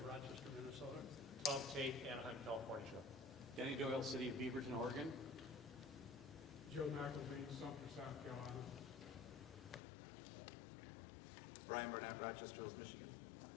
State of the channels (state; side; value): drops out; right; at 9.8 s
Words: of Rochester, Minnesota. Tom Tate, Anaheim, California. Danny Doyle, City of Beaverton, Oregon. Joe McElveen, Sumter, South Carolina. Brian Burnett, Rochester Hills, Michigan.